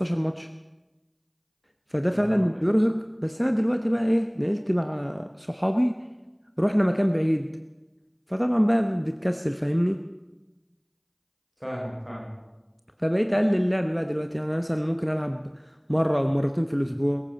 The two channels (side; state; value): both; identical; correlation 1.00